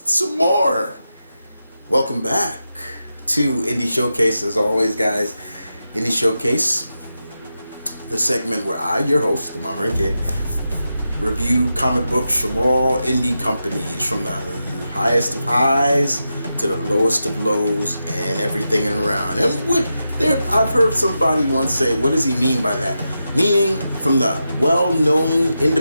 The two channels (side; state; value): both; inverted; correlation -0.89